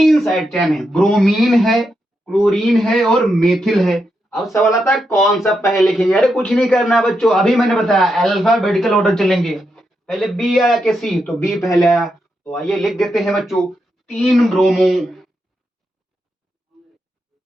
साइड चेन है, ब्रोमीन है, क्लोरीन है और मेथिल है। अब सवाल आता है कौन सा पहले लिखेंगे, अरे कुछ नहीं करना है बच्चों, अभी मैंने बताया अल्फाबेटिकल ऑर्डर चलेंगे। पहले बी आया कि सी, तो बी पहले आया। तो आइए लिख देते हैं बच्चों, 3 bromo,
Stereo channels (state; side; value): normal; both; correlation 0.84